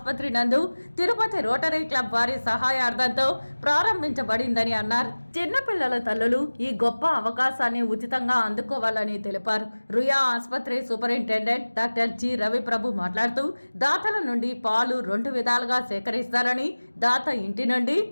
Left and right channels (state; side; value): inverted; both; correlation -1.00